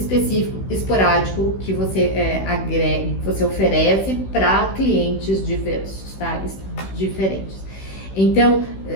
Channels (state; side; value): late; right; 16 ms